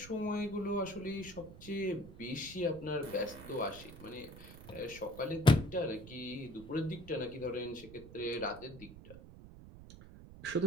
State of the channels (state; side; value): noise; right; rumble, 16 dB below the sound